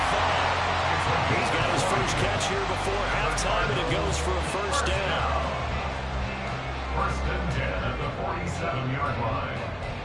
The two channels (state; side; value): identical; both; correlation 1.00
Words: He's got his first catch here before halftime, and it goes for a first down. First and 10 at the 47-yard line.